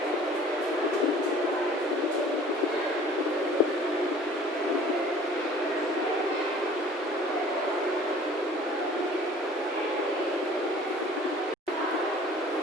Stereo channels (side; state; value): both; normal; correlation 0.49